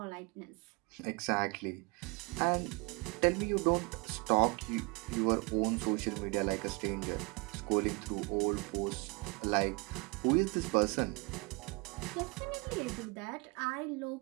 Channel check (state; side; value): quieter; left; 28.7 dB